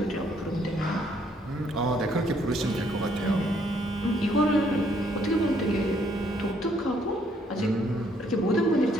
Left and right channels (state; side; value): normal; both; correlation 0.68